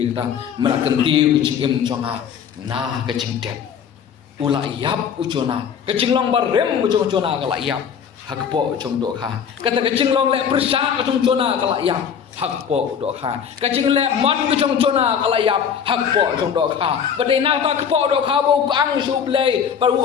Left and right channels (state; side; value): quieter; right; 7.6 dB